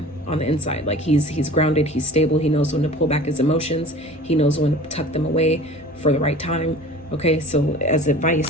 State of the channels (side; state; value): both; normal; correlation 0.42